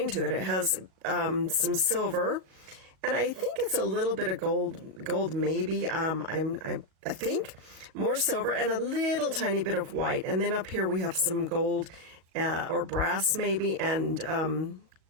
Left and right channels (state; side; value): late; left; 38 ms